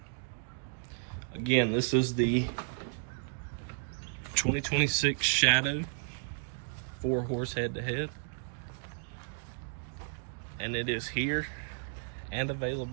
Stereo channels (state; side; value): silent; left; digital silence